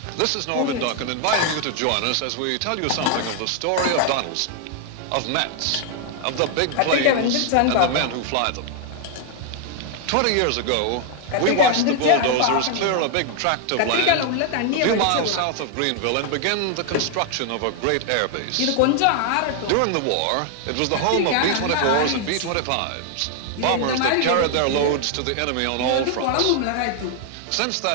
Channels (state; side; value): different; both; correlation 0.00